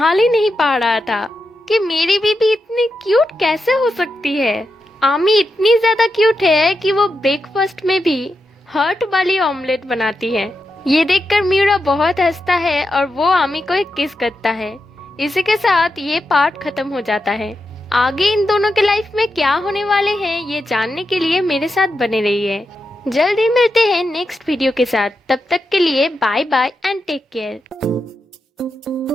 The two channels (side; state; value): both; normal; correlation 0.87